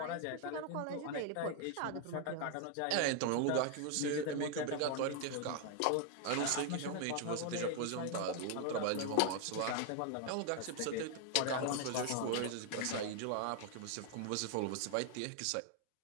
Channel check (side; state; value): both; different; correlation 0.00